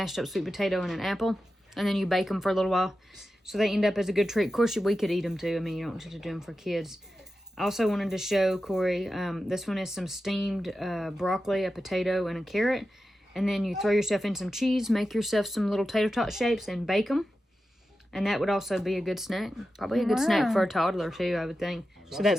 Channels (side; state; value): both; normal; correlation 0.92